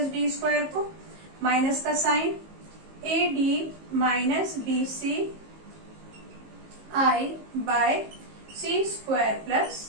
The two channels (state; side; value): late; left; 19 ms